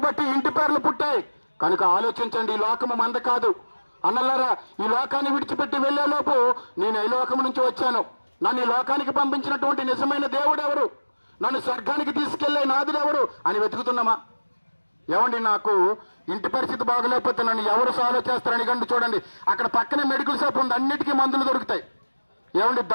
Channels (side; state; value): both; inverted; correlation -1.00